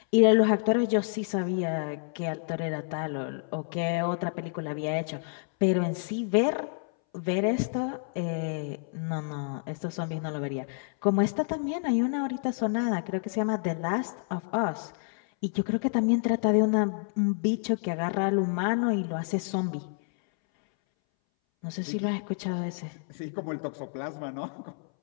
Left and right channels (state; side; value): silent; right; 59 dB below the other